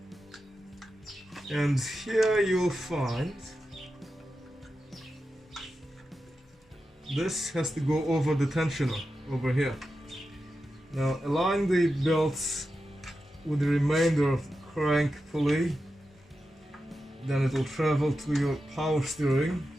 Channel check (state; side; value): normal; both; correlation 0.90